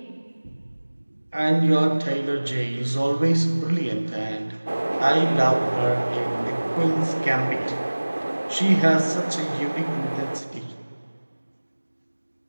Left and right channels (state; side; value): inverted; both; correlation -1.00